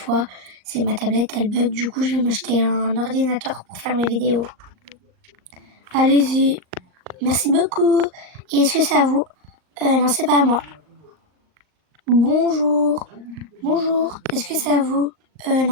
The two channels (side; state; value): left; late; 38 ms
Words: C'est ma tablette, elle bug. Du coup, je vais m'acheter un ordinateur pour faire mes vidéos. Allez-y. Merci beaucoup. Et est-ce que c'est à vous? Non, c'est pas à moi. Bonjour. Bonjour. Est-ce que c'est à vous?